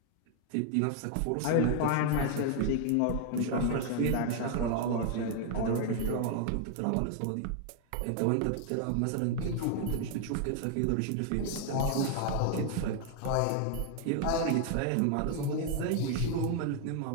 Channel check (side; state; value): both; different; correlation 0.00